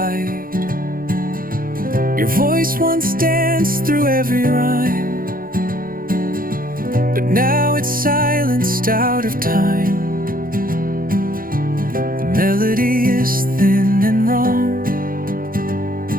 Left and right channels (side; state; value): left; late; 0.41 ms